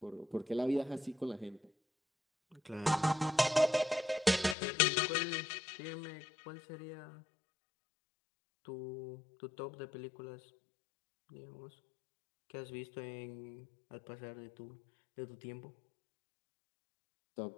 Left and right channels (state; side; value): drops out; right; at 4.5 s